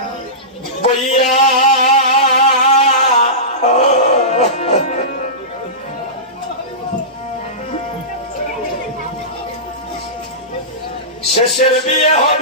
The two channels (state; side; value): normal; both; correlation -0.20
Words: বইয়া, শেষের বিয়ে